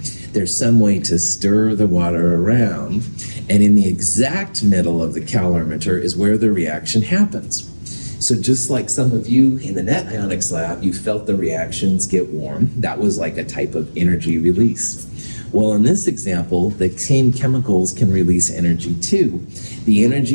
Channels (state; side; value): inverted; both; correlation -1.00